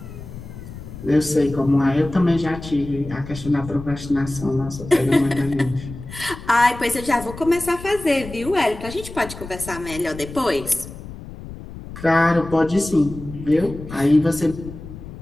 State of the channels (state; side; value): noise; left; rumble, 13 dB below the sound